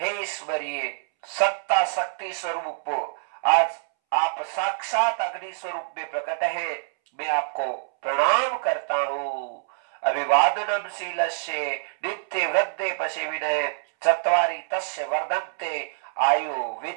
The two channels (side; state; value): left; silent; 61 dB below the other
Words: हे ईश्वरीय सत्ता शक्ति स्वरूप, आज आप साक्षात अग्नि स्वरूप में प्रकट है, मैं आपको प्रणाम करता हूं। अभिवादनम शीलस्य नित्य वृद्धे पशे विनय चत्वारि तस्य वर्धन्ते आयु